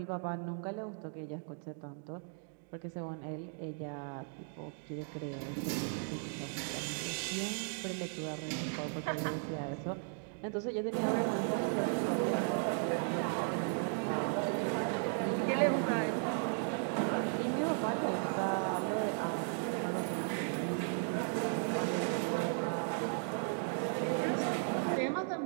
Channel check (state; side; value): silent; left; 54 dB below the other